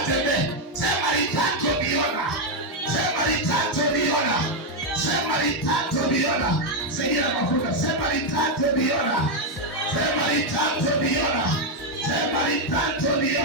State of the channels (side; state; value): both; normal; correlation 0.02